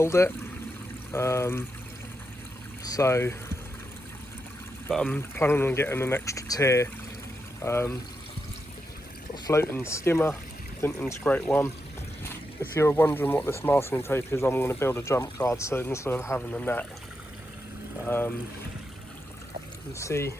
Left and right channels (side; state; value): both; normal; correlation 0.85